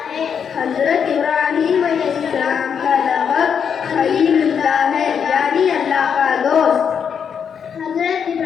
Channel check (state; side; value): quieter; right; 7.3 dB